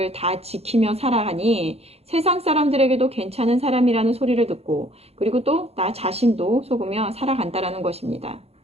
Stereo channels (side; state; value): left; late; 0.30 ms